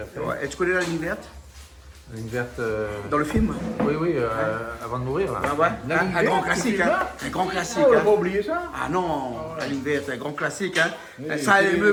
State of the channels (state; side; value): identical; both; correlation 1.00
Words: fait. Ouais. Et tu connais la ligne verte Une verte. dans le film? Oui, avant de mourir là. Ah ouais. La Hein, ligne un grand verte, classique, ce hein. film-là Un grand classique, On va hein. pas oublier ça. Ah non, la ligne verte, un grand classique, hein. Oui, Ça a c'est- ému